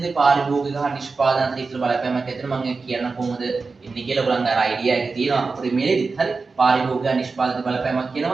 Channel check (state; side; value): quieter; left; 4.3 dB